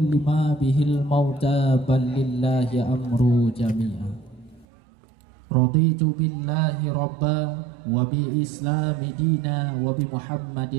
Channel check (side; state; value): left; drops out; at 4.7 s